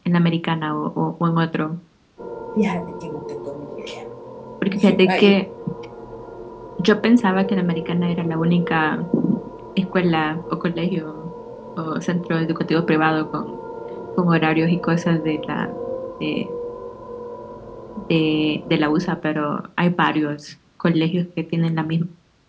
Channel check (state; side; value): identical; both; correlation 1.00